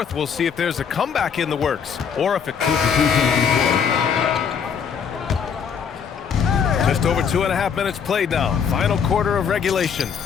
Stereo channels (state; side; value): quieter; right; 6.9 dB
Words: we'll see if there's a comeback in the works, or if it... Just over 2.5 minutes played now. Final quarter of regulation.